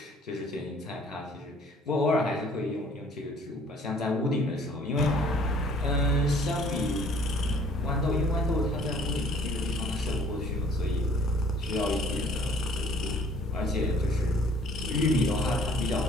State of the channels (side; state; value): both; normal; correlation 0.56